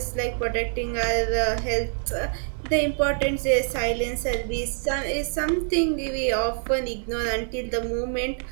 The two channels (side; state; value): left; silent; digital silence